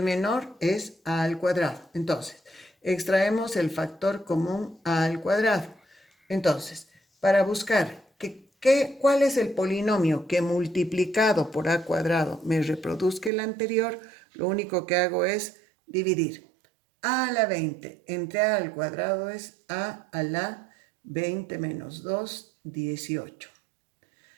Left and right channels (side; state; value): left; drops out; at 13.3 s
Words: menor es a al cuadrado. Entonces, extraemos el factor común a al cuadrado. Entonces, para buscar cuál es el polinomio que multiplicado por a cuadrado me reproduzca el anterior, lo único que hago es dividir. A a la 20 entre a al cuadrado es a la 20 menos 2, 18.